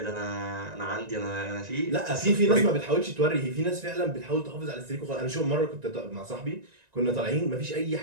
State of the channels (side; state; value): left; late; 1.9 ms